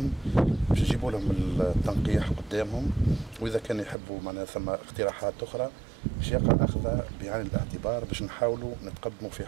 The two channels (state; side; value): drops out; left; at 4.0 s